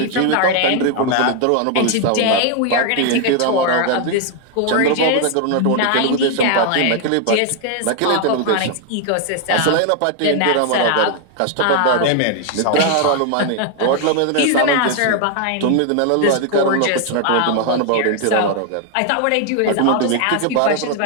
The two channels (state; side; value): different; both; correlation 0.00